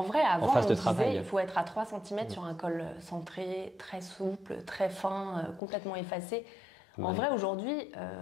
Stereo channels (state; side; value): drops out; right; at 5.6 s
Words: vrai, avant, on disait il faut être à 3 cm sur un col centré, très souple, très fin, complètement effacé. En vrai, aujourd'hui,